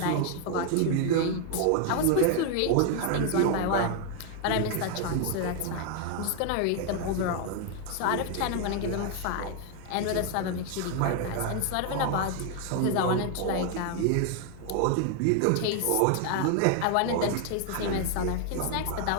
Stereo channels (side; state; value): both; different; correlation 0.00